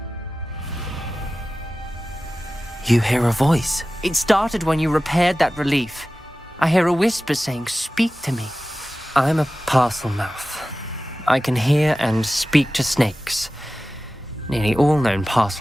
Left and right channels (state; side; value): normal; both; correlation 0.95